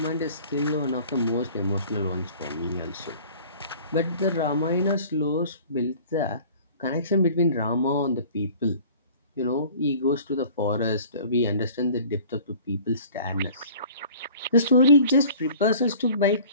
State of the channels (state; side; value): inverted; both; correlation -0.47